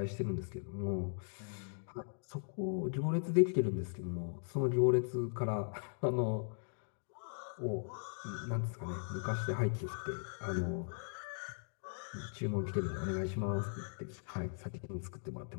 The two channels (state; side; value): silent; right; digital silence